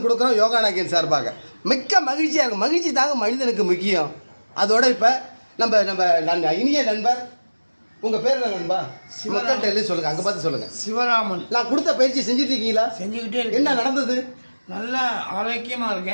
கொடுக்குறோம் யோகா நாயகன் சார்பாக. மிக்க மகிழ்ச்சியாக இருக்கும். மகிழ்ச்சி தாங்க மனிதனுக்கு முக்கியம். அதோட இப்போ நம்ம இனிய நண்பர், உங்கள் பேர் என்ன நண்பா? மக்கள்கிட்ட சொல்லுங்கள், அங்கே பார்த்து சொல்லுங்கள். சிவராமன். நான் கொடுத்த பயிற்சி செஞ்சுட்டு இருக்கீங்களா? செஞ்சுக்கிட்டே இருக்கேன். என்ன நடந்தது? நல்லா ஆரோக்கியமாக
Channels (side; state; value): both; inverted; correlation -1.00